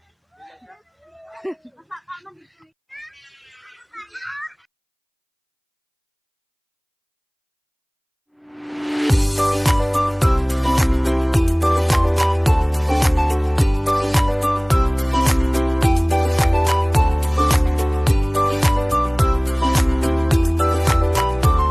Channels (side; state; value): both; identical; correlation 1.00